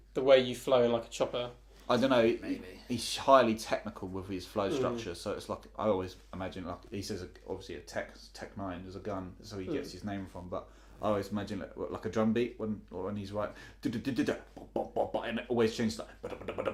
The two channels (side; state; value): both; identical; correlation 1.00